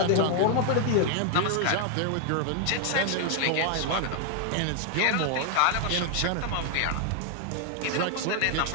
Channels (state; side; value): different; both; correlation 0.00